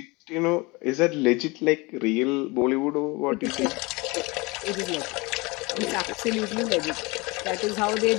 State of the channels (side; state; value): right; quieter; 25.1 dB